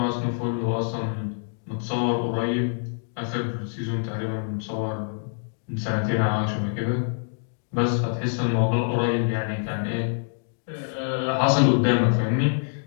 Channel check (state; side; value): silent; right; digital silence